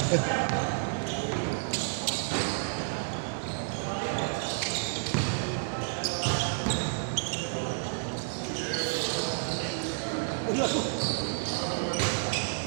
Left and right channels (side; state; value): left; silent; digital silence